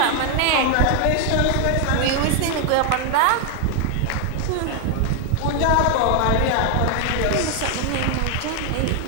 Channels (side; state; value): both; different; correlation 0.00